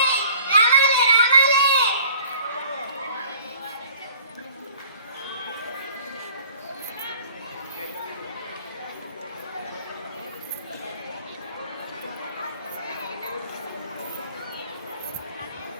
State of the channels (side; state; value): both; inverted; correlation -0.51